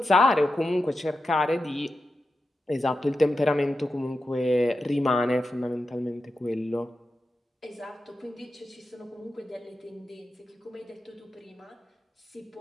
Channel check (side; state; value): both; normal; correlation 0.90